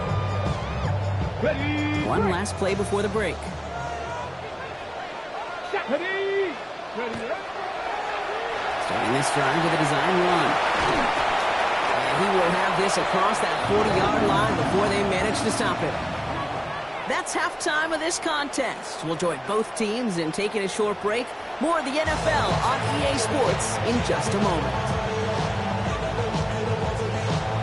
Ready. One last play before the break. Ready. Ready. Starting this drive with a design run. And he will have drove this across that 40-yard line before they managed to stop it. That's halftime of this contest. We'll join both teams in taking a short break. More of the NFL on EA Sports in just a moment.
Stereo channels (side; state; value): both; identical; correlation 1.00